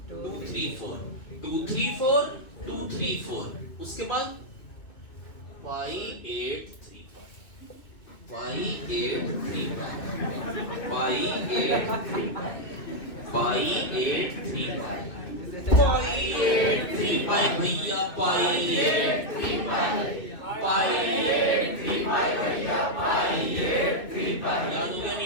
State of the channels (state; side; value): late; right; 2.8 ms